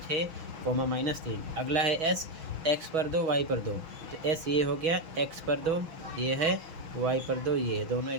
-3। अगला है S, x पर 2 y पर 2, तो S ये हो गया, x पर 2 ये है, y पर 2 ये है, दोनों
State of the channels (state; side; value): late; left; 6.2 ms